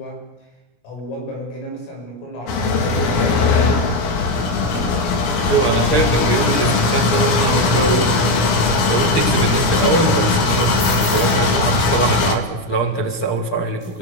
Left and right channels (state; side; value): late; right; 17 ms